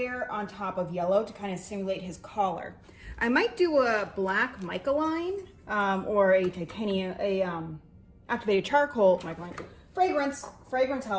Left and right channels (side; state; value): both; identical; correlation 1.00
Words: on top of yellow to kind of simulate his collar. I might do a black mica line or a titanium, activated charcoal mica line. Fragrance